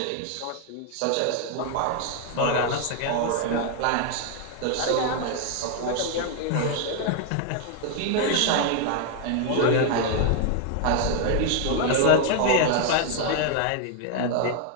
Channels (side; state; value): both; different; correlation 0.00